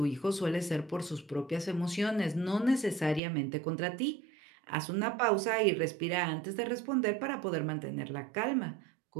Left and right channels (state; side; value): drops out; left; at 3.2 s